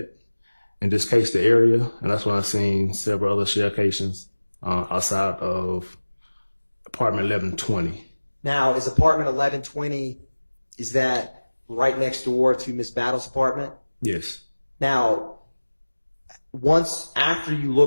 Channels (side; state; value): both; inverted; correlation -1.00